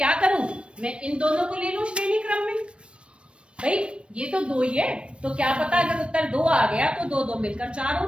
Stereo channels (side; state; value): left; late; 0.058 ms